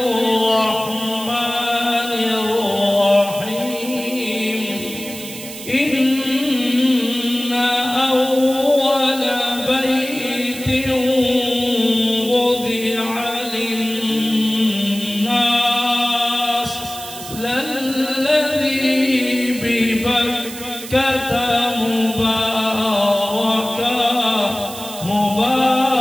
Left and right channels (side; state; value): right; noise; hiss, 12 dB below the sound